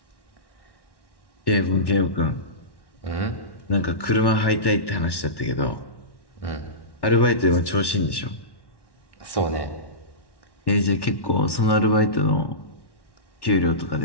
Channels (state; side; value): late; right; 1.1 ms